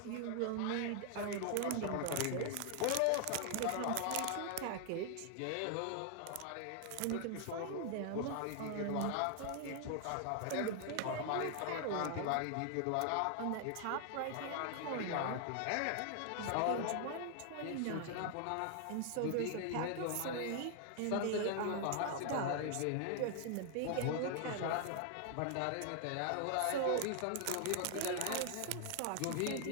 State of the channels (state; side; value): different; both; correlation 0.00